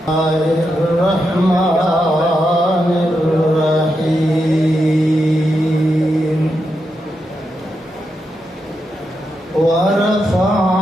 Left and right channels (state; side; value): normal; both; correlation 0.85